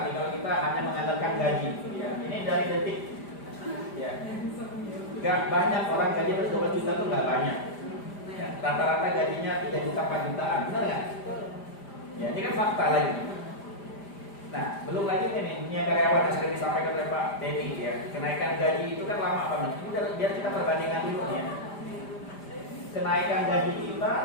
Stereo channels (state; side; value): late; right; 5.0 ms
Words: nih kalau kita hanya mengandalkan gaji, ya. Ini dari detik, ya. Gak banyak orang gaji 12 juta tuh nggak banyak. Ya, rata-rata gajinya 3 juta 4 jutaan, benar nggak? Ya, ini kan fakta lagi. Nah, belum lagi ini karyawan yang sering disampaikan oleh Pak Denny, ya. Kenaikan gaji itu kan lama banget. Ini biar kita perbandingan dulu ya. Kenaikan gaji kita